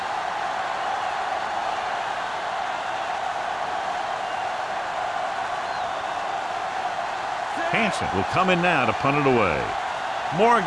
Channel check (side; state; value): both; identical; correlation 1.00